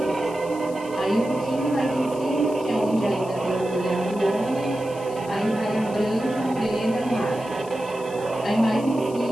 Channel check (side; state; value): left; noise; hiss, 20 dB below the sound